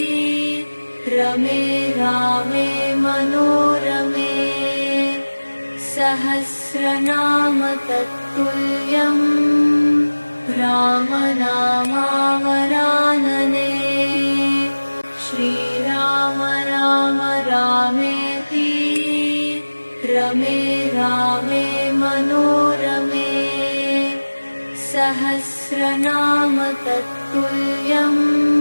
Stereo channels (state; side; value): inverted; both; correlation -1.00